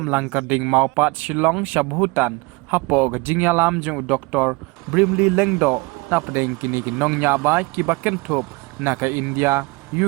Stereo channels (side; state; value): left; quieter; 25.8 dB